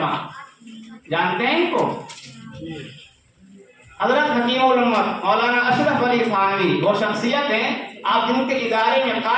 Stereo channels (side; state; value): both; identical; correlation 1.00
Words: جانتے ہیں ان کو؟ حضرت حکیم الامت مولانا اشرف علی تھانوی وہ شخصیت ہیں آپ جن کے ادارے میں